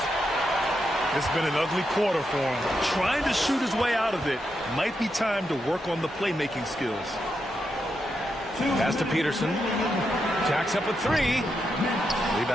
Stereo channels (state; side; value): normal; both; correlation 0.84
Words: It's been an ugly quarter for him. Trying to shoot his way out of it. Might be time to work on the playmaking skills. Pass to Peterson. Jacks up a three.